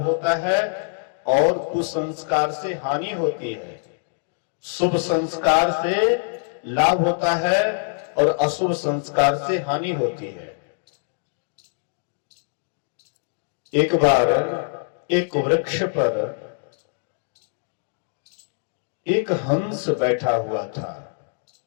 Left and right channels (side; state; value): right; silent; digital silence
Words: होता है और कुसंस्कार से हानि होती है। शुभ संस्कार से लाभ होता है और अशुभ संस्कार से हानि होती है। एक बार एक वृक्ष पर एक हंस बैठा हुआ था